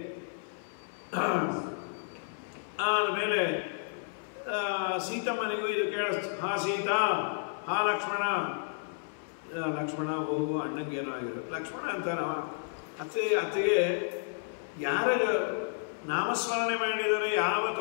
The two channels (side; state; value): right; silent; 56 dB below the other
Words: ಆಮೇಲೆ ಸೀತಮ್ಮನಿಗೂ ಇದು ಕೇಳಿಸ್ತು. ಹಾ ಸೀತಾ, ಹಾ ಲಕ್ಷ್ಮಣ. ಲಕ್ಷ್ಮಣ ಹೋಗು, ಅಣ್ಣಂಗೇನೋ ಆಗಿರೋ ಲಕ್ಷ್ಮಣ ಅಂತಾನ. ಅತ್ತಿಗೆ ಯಾರ ನಾಮಸ್ಮರಣೆ ಮಾಡಿದರೆ ಯಾವ